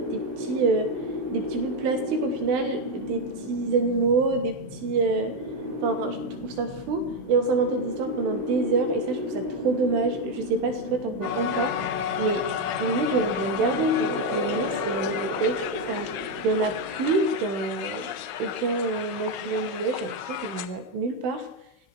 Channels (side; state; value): left; late; 16 ms